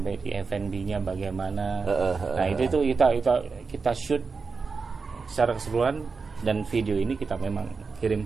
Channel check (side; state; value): left; quieter; 4.8 dB